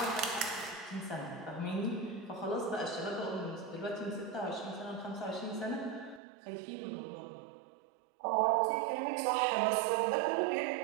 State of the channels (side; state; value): left; drops out; at 6.2 s